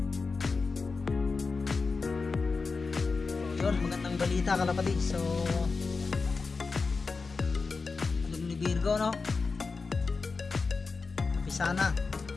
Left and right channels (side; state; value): right; quieter; 4.4 dB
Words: So yun, magandang balita kalapatids. So alam ni Virgo, no? Kapisa na.